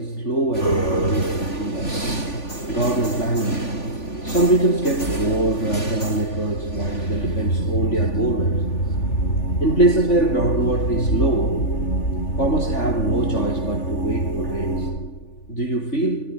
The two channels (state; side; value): late; right; 3.5 ms